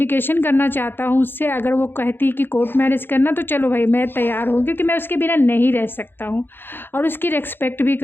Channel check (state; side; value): late; right; 0.10 ms